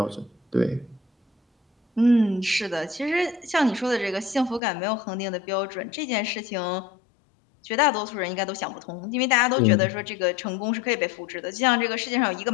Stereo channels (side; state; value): right; drops out; at 4.6 s